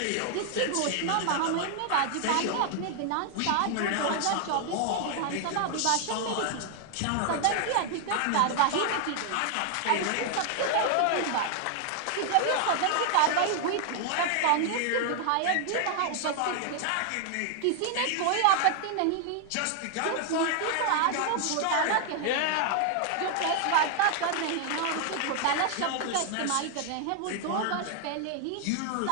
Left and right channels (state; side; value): different; both; correlation 0.00